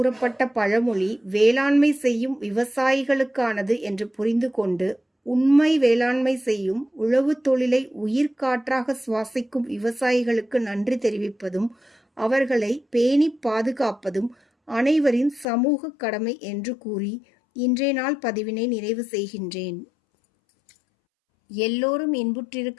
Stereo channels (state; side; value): drops out; right; at 15.5 s